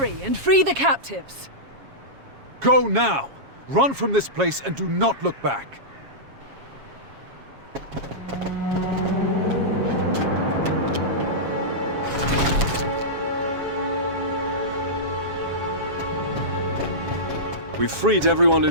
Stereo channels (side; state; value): left; late; 7.3 ms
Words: and free the captives! Go now! Run from this place and do not look back! We've freed everyone